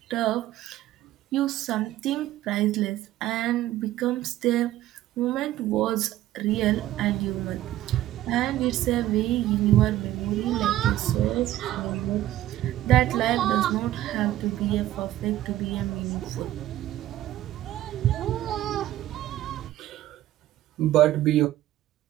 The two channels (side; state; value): left; quieter; 14.0 dB